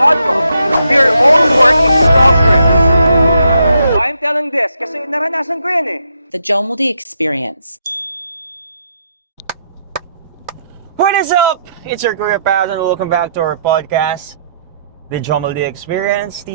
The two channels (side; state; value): both; inverted; correlation -0.76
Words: will. We are all work in progress. Why I'm telling this? Kasi naranasan ko yan eh. The Jomoldi Experience. What is up? It's your career path and welcome back to our podcast, The Jomoldi Experience,